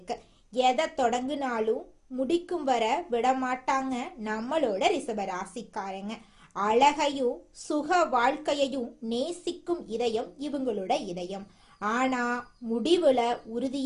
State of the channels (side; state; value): both; identical; correlation 1.00